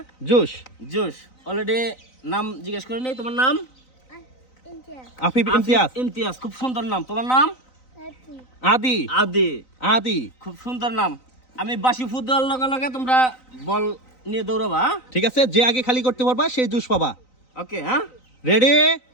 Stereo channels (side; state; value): right; late; 3.9 ms